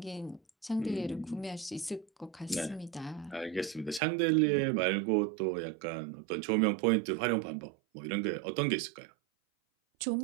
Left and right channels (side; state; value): left; drops out; at 4.0 s